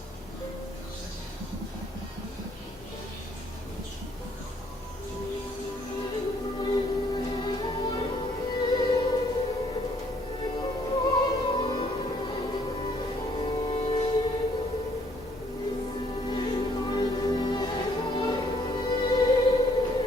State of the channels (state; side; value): normal; both; correlation 0.65